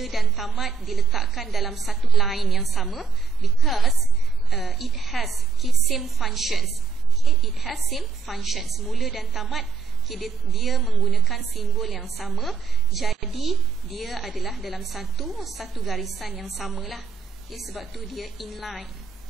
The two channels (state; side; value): quieter; left; 5.2 dB